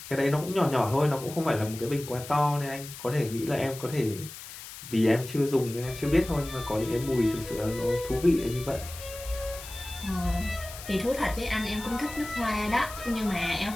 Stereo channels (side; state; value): left; noise; hiss, 13 dB below the sound